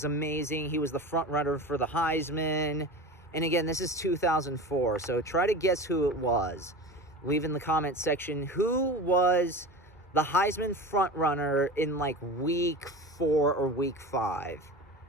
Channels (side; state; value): both; normal; correlation 0.31